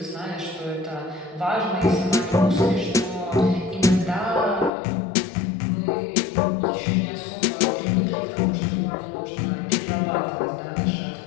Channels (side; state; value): right; drops out; at 4.7 s